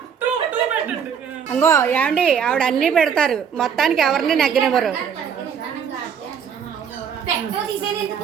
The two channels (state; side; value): quieter; left; 7.4 dB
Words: అంగో ఏమండి ఆవిడ అన్నీ పెడతారు, మొత్తానికి ఎవరిని నెగ్గనివ్వరు. పెట్టో తీసేది ఎందుకు?